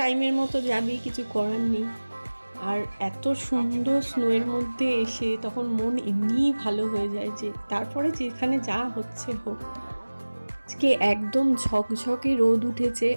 মতো যাবেই, কিছু করার নেই। আর এত সুন্দর স্নোয়ের মধ্যে এসে তখন মন এমনিই ভালো হয়ে যায়, যে তারপরে যেখানে যা হচ্ছে হোক। আজকে একদম ঝকঝকে রোদ উঠেছে,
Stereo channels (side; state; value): both; inverted; correlation -1.00